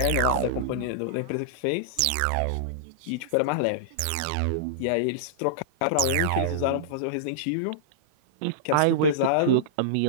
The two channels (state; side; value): different; both; correlation -0.02